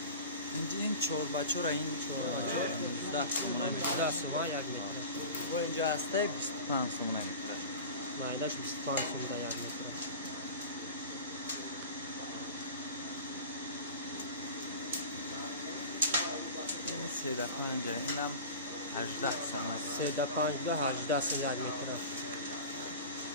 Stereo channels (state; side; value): inverted; both; correlation -0.34